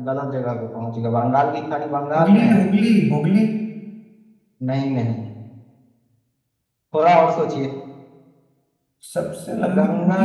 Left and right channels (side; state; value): both; identical; correlation 1.00